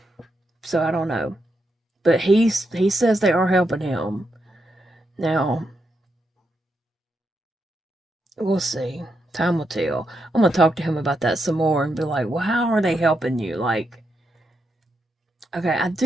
So I don't know. But he says they are helping him. Now, we'll see. Time will tell. I'm going to talk to him about that some more and be like, well, how are they helping you? Like, okay, I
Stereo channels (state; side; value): normal; both; correlation 0.83